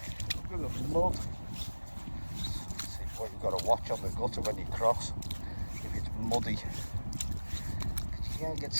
Look at the mud. See what you've got to watch on the gutter when you cross. If it's muddy, you can't get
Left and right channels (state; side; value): inverted; both; correlation -1.00